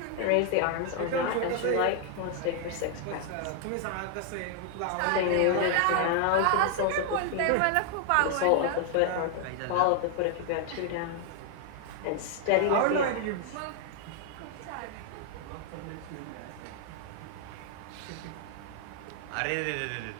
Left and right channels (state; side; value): different; both; correlation 0.00